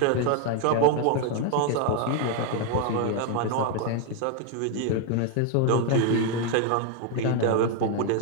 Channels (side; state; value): both; different; correlation 0.01